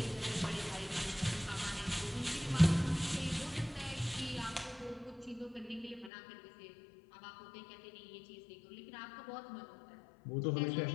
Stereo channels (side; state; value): right; drops out; at 6.1 s